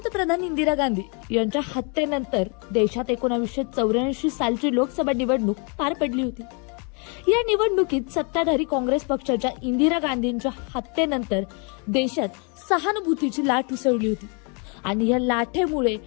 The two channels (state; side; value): quieter; right; 35.7 dB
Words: इंदिरा गांधी यांच्या हत्येनंतर देशात 1984 सालची लोकसभा निवडणूक पार पडली होती. या निवडणुकीत सत्ताधारी काँग्रेस पक्षाच्या इंदिरा गांधींच्या हत्येनंतर देशात सहानुभूतीची लाट उसळली होती आणि या लाटेमुळे